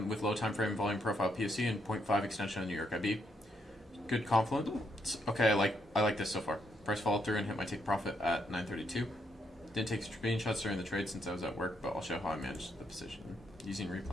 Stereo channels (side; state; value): both; normal; correlation 0.76